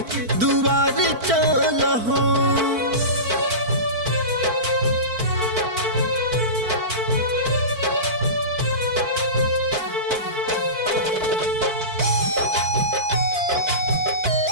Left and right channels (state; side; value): late; left; 4.5 ms